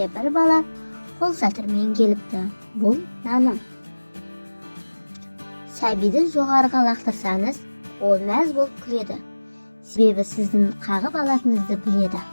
бір бала қол шатырмен келіпті. Бұл наным. Сәбиді жоғарыға лақтырсаңыз, ол мәз болып күледі. Себебі сіздің қағып алатыныңызды біледі.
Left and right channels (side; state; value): both; inverted; correlation -1.00